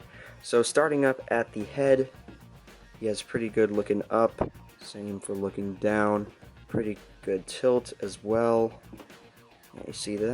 So starting up at the head, he has pretty good looking up, same for looking down, pretty good tilt as well. You see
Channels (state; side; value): identical; both; correlation 1.00